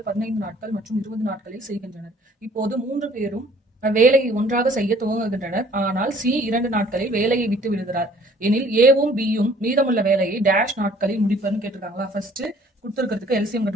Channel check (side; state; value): both; normal; correlation 0.56